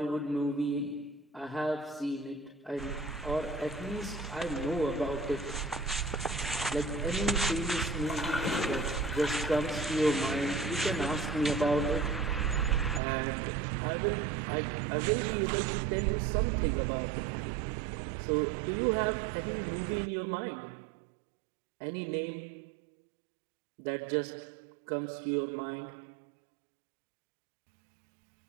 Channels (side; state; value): left; drops out; at 13.0 s